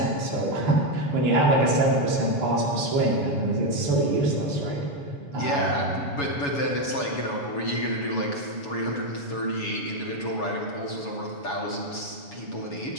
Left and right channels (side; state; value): right; late; 7.1 ms